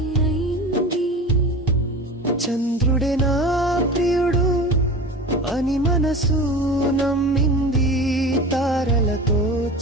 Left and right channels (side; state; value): both; normal; correlation 0.33